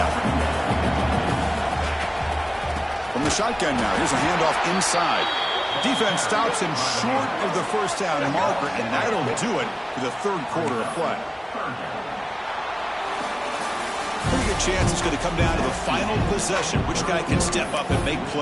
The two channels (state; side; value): identical; both; correlation 1.00